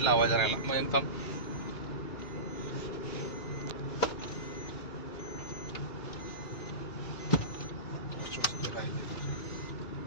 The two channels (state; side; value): late; right; 2.4 ms